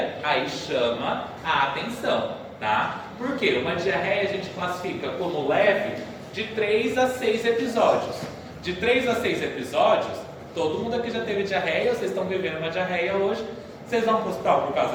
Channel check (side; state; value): both; identical; correlation 1.00